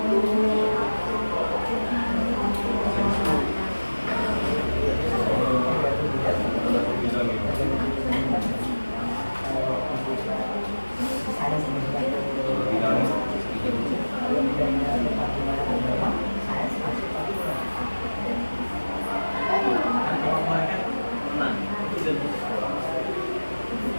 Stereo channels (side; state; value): both; inverted; correlation -1.00